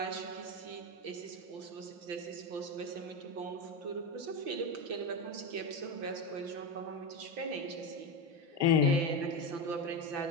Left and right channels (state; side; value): late; left; 5.9 ms